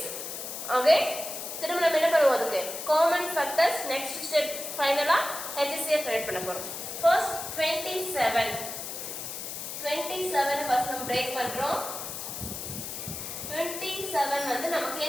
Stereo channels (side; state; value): left; noise; hiss, 7 dB below the sound